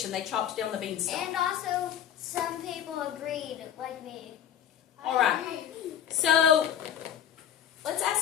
They chopped down the beanstalk. And also, some people agreed, like me. All right. So let's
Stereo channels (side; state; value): right; quieter; 9.5 dB